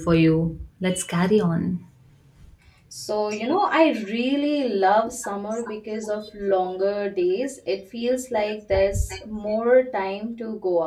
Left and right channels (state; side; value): identical; both; correlation 1.00